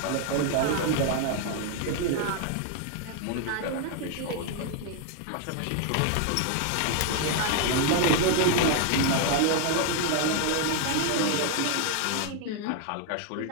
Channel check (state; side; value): different; both; correlation 0.00